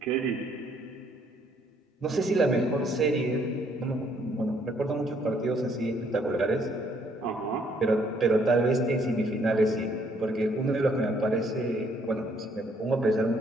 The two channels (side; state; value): both; normal; correlation 0.67